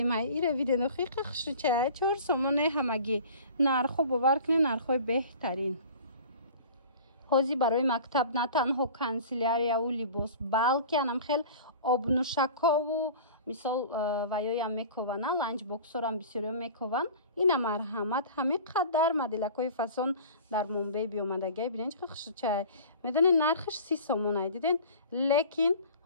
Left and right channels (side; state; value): both; inverted; correlation -0.41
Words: ایره ویدین خیلی خشر چه 4 سومونه همگی نرخو باور کنین نرخوی بهترین. حوزی برای مکتب نه تنها کانسیلاریا و لیباس بلکه هم خیلی آبنوشکا و مثال ویای هم میکوونن لانچ باکسور هم بسیاری میکوون. این مرحمت همه قدر مدلکای فسون در مومبای بیامدگی بینین چه خوش چه میدونین نرخش 30 سومونه دیدین لیکن